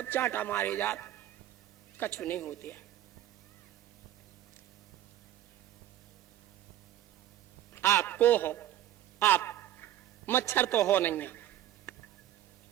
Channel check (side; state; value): left; quieter; 12.7 dB